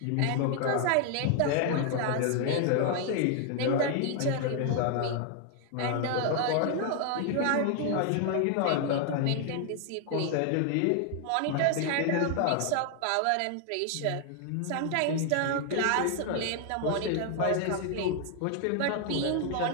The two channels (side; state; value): both; different; correlation 0.00